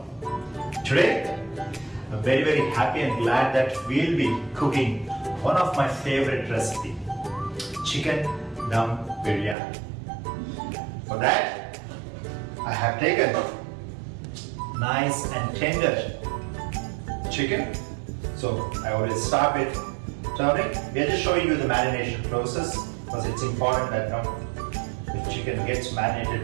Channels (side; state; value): left; drops out; at 9.6 s